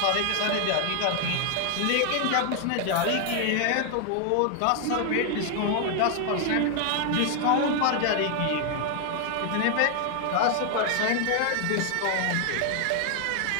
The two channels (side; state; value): both; different; correlation 0.00